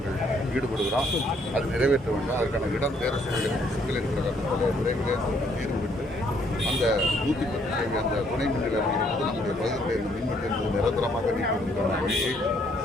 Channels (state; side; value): normal; both; correlation 0.67